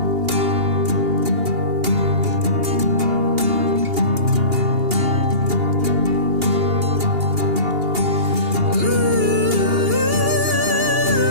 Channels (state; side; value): late; left; 2.8 ms